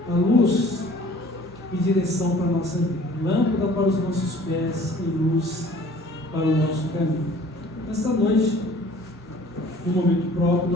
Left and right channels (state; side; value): normal; both; correlation 0.51